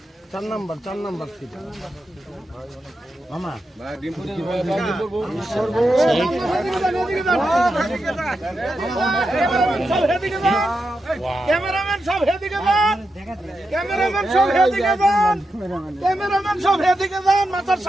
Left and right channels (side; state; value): both; normal; correlation 0.87